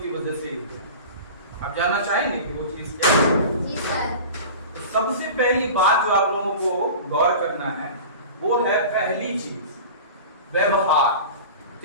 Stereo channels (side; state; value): both; inverted; correlation -0.36